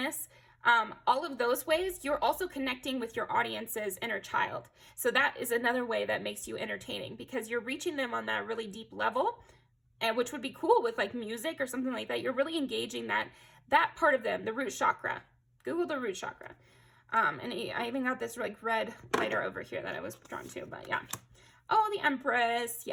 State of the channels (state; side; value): identical; both; correlation 1.00